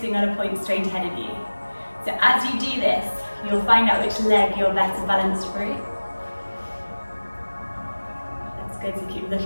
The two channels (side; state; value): both; inverted; correlation -1.00